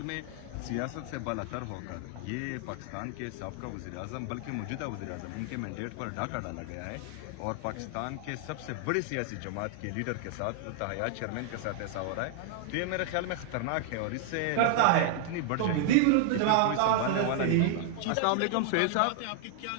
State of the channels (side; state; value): both; different; correlation 0.00